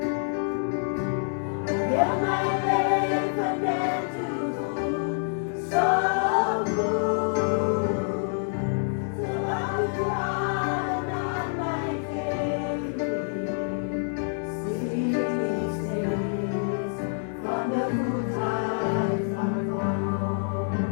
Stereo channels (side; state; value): right; silent; digital silence